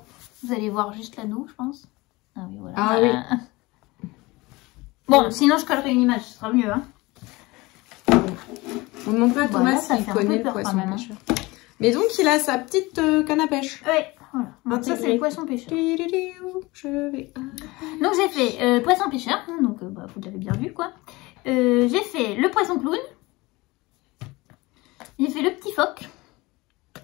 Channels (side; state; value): right; quieter; 22.2 dB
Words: Vous allez voir juste l'anneau, je pense. Ah oui, voilà. Ah oui. Bon, sinon, je collerai une image, ce sera mieux, hein. On ne demande pas à Thomas s'il connaît le poisson pêcheur. Mais donc, il a sa petite canne à pêche. Ouais, voilà. Donc ça, c'est le poisson pêcheur. Donc, j'ai fait poisson pêcheur. Donc, bah, vous l'avez bien vu, quoi. J'ai fait le poisson clown. J'ai fait le petit phoque.